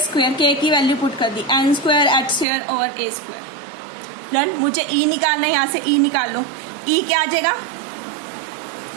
K की वैल्यू पुट कर दी n square h square over a square. Done. मुझे e निकालना है, यहां से e निकाल लो। e क्या आ जाएगा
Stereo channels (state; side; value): drops out; left; at 2.5 s